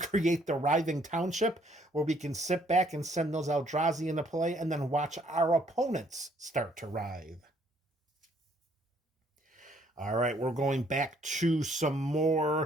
the Writhing Township, where we can sit back and send those Eldrazi into play and then watch our opponents start to writhe. All right, we're going back to some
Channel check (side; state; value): both; normal; correlation 0.65